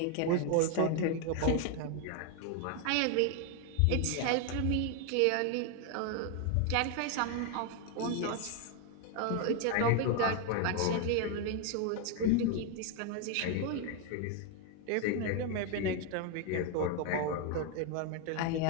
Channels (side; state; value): both; different; correlation 0.01